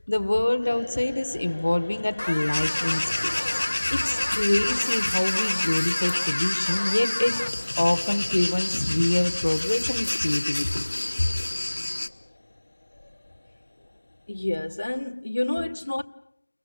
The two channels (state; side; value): inverted; both; correlation -1.00